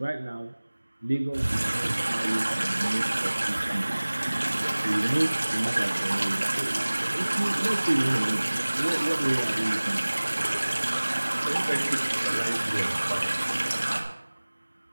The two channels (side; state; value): both; inverted; correlation -1.00